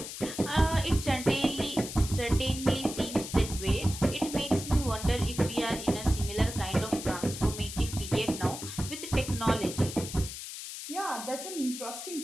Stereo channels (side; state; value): left; noise; hiss, 9 dB below the sound